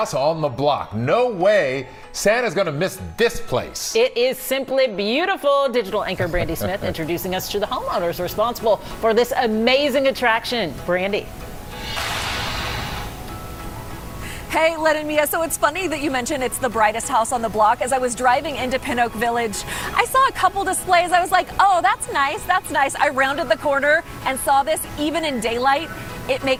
on the block. No way Santa's going to miss this place. It is simply beautiful. Digital anchor Brandi Smith introducing us to the homeowners responsible for this amazing attraction. Brandi. Hey, Len and Mia, so it's funny that you mentioned it's the brightest house on the block. As I was driving into Pin Oak Village, I saw a couple displays. I was like, oh, that's nice, that's nice. I rounded the corner and saw this even in daylight. It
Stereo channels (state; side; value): identical; both; correlation 1.00